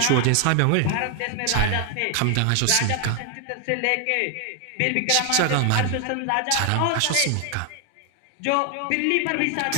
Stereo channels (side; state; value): both; different; correlation 0.00